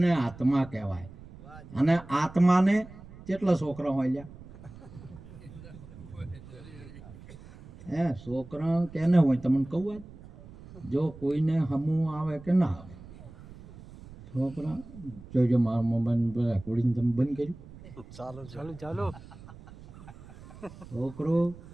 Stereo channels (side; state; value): right; noise; rumble, 18 dB below the sound